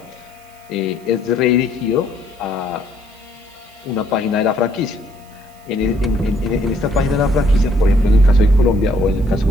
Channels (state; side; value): noise; right; hiss, 29 dB below the sound